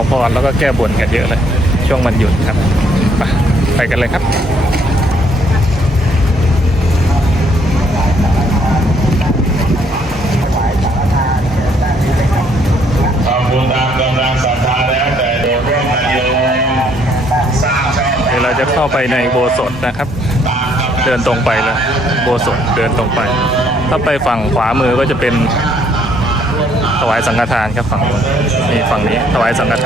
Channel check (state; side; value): normal; both; correlation 0.67